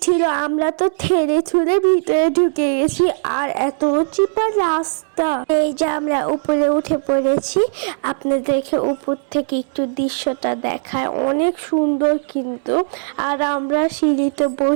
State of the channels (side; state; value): left; silent; digital silence